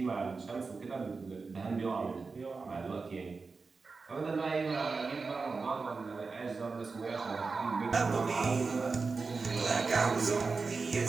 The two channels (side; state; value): left; quieter; 4.4 dB